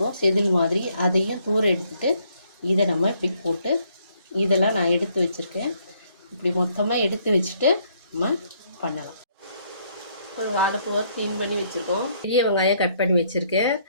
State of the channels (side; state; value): both; inverted; correlation -0.69